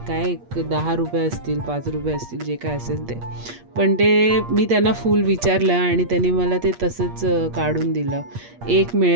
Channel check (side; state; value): left; late; 8.5 ms